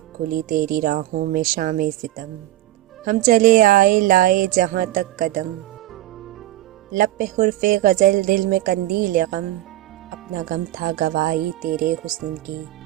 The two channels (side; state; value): left; quieter; 15.2 dB